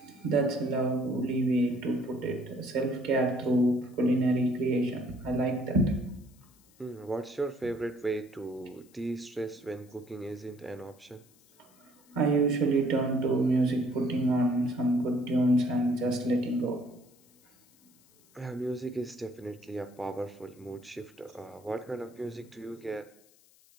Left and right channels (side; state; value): left; noise; hiss, 29 dB below the sound